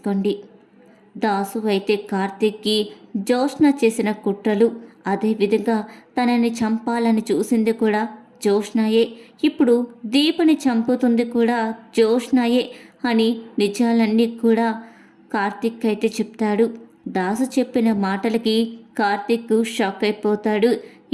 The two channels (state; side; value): identical; both; correlation 1.00